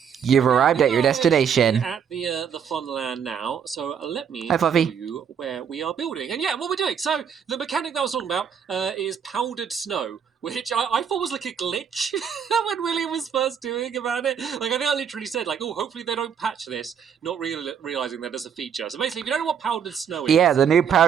You've arrived at your destination. At the Funland now, so let me Hi, Fluffy. show you where we are building. And yeah, what we're doing. So the mechanic that I was talking about is powdered snow, which I thought was like a glitch when William was first doing about it. Like I think I literally said like, oh, hopefully they don't patch this, not realizing that as a feature. So basically, if you don't know what powdered snow is, yeah, the new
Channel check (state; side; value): quieter; left; 7.7 dB